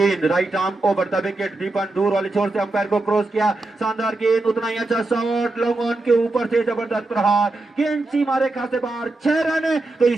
right arm over the wicket, Deepan दूर वाले छोर से अंपायर को क्रॉस किया, शानदार गेंद, उतना ही अच्छा शॉट, लॉन्ग ऑन के ऊपर से जबरदस्त प्रहार, गेंद सीमा रेखा से बाहर, 6 रन। तो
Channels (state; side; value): quieter; left; 3.0 dB